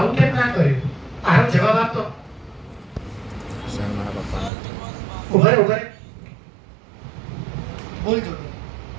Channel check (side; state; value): left; drops out; at 4.5 s